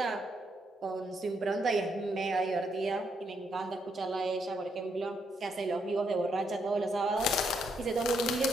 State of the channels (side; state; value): both; normal; correlation 0.76